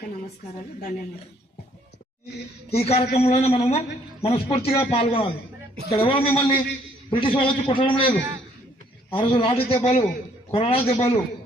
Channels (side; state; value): both; normal; correlation 0.64